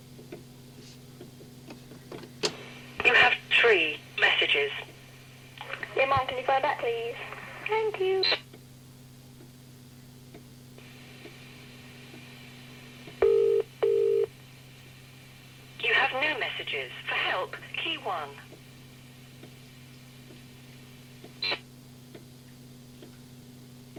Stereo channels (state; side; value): identical; both; correlation 1.00